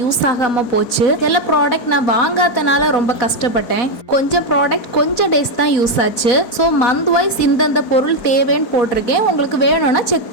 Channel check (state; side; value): late; right; 4.1 ms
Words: யூஸ் ஆகாம போச்சு. சில ப்ராடக்ட் நான் வாங்காதனால ரொம்ப கஷ்டப்பட்டேன். கொஞ்சம் ப்ராடக்ட் கொஞ்சம் டேஸ் தான் யூஸ் ஆச்சு. ஸோ மந்த் வைஸ் இந்தந்த பொருள் தேவைன்னு போட்டிருக்கேன். உங்களுக்கு வேணும்னா செக்